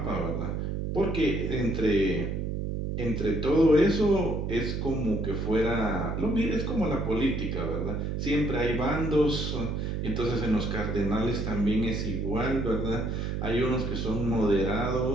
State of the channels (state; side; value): noise; right; hum, 2 dB below the sound